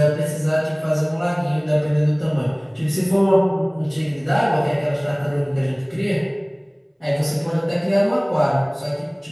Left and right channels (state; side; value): identical; both; correlation 1.00